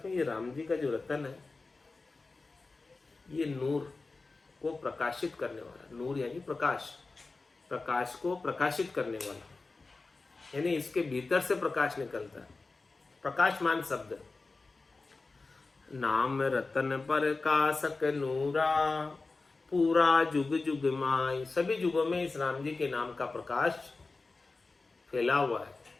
में ये राम जी का जो रतन है, ये नूर को प्रकाशित करने वाला। नूर यानी प्रकाश, प्रकाश को प्रकाशित करने वाला, यानी इसके भीतर से प्रकाश निकलता है, प्रकाशमान शब्द। नाम रतन पर कासक नूरा, पूरा जुग जुग माई। सभी जुगों में इस राम जी के नाम का प्रकाश फैला हुआ है,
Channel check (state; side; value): quieter; right; 3.7 dB